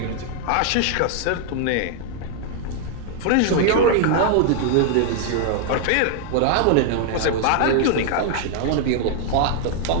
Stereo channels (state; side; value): different; both; correlation 0.00